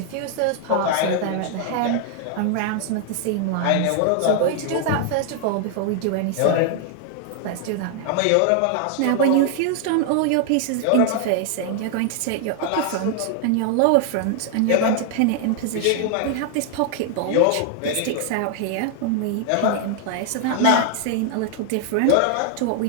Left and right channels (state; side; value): different; both; correlation 0.00